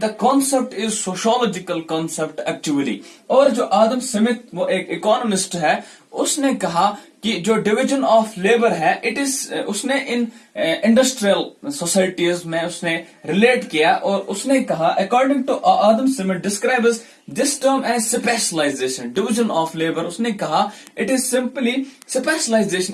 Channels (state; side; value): identical; both; correlation 1.00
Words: concept is sociological concept actually. और जो आदम स्मिथ वो एक इकोनॉमिस्ट है, उसने कहा कि जो डिवीजन ऑफ लेबर है इट इज, उसने इन इंडस्ट्रियल सोसाइटीज में उसने रिलेट किया और उसने कहा according to Adam Smith describes this term as specialization. Division of labour उसने कहा it is simply